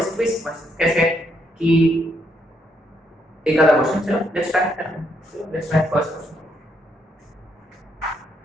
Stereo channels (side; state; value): both; normal; correlation 0.75